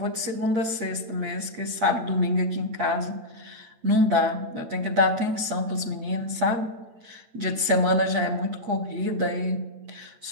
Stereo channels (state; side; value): late; left; 8.6 ms